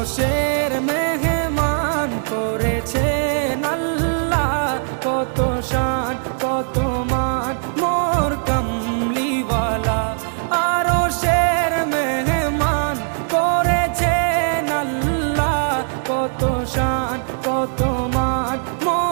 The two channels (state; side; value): silent; left; 66 dB below the other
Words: মেহমান করেছেন আল্লাহ, কত শান কত মান মোর কামলিওয়ালা। আরশের মেহমান করেছেন আল্লাহ, কত শান কত মান